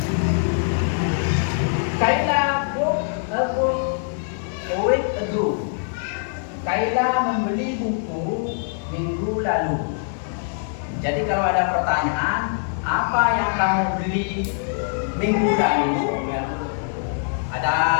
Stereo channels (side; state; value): right; silent; 59 dB below the other